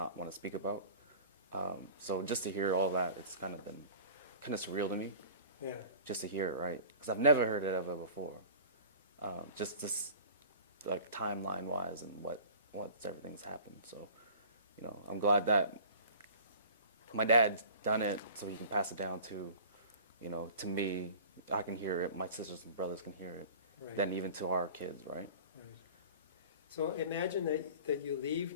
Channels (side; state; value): both; inverted; correlation -0.43